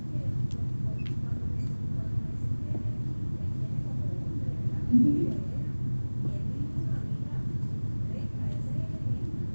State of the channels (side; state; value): both; inverted; correlation -1.00